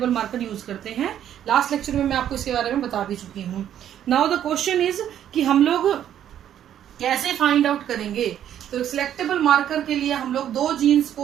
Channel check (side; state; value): left; quieter; 10.5 dB